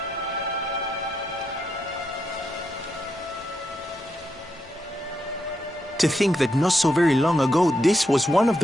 To think that not so very long ago, this was one of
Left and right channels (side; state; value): both; normal; correlation 0.82